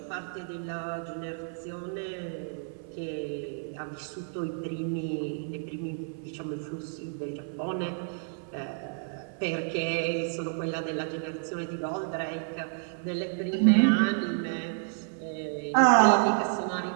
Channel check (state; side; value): silent; left; 58 dB below the other